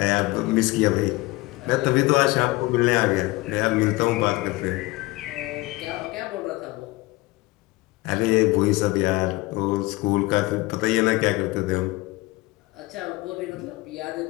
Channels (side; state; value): right; quieter; 21.3 dB